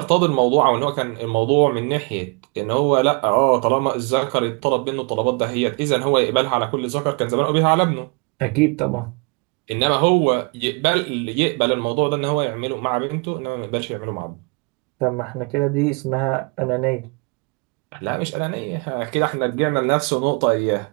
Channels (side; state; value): left; quieter; 32.0 dB